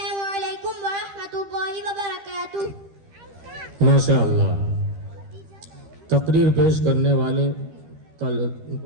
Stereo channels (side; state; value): left; late; 13 ms